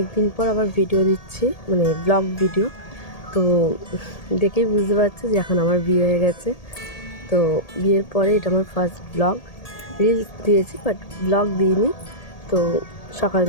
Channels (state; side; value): late; right; 1.8 ms